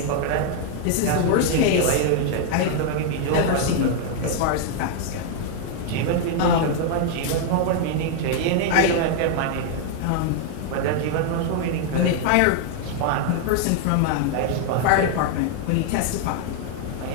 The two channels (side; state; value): both; different; correlation 0.00